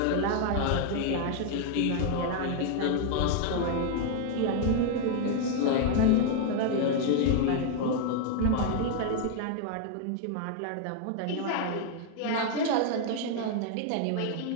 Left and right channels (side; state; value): both; different; correlation 0.00